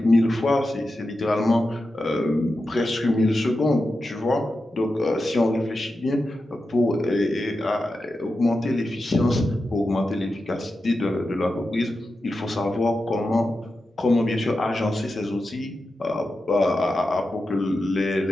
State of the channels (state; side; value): normal; both; correlation 0.90